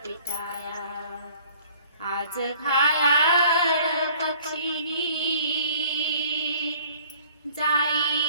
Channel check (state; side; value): inverted; both; correlation -0.54